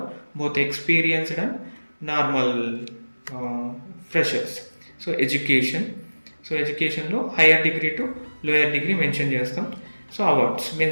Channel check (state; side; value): inverted; both; correlation -1.00